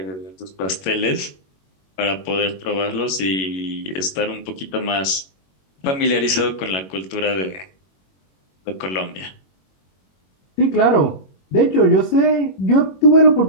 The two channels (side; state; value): right; late; 21 ms